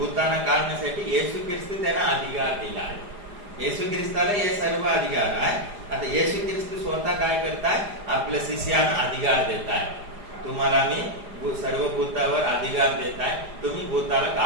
काढण्यासाठी येशू ख्रिस्त त्यांना अधिकार दिला आहे. येशू ख्रिस्ताला हे सर्व अधिकार आहे. आता येशू ख्रिस्त स्वतः काय करताय? आपल्या शिष्यांना अधिकार देताय. तुम्हाला मी सर्व भूतावर अधिकार देताय, तुम्ही भूताला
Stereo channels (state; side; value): late; left; 4.9 ms